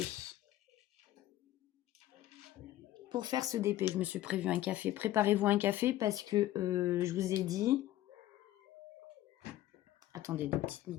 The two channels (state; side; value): quieter; right; 14.4 dB